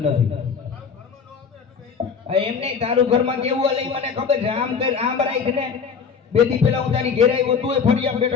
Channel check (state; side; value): quieter; right; 6.1 dB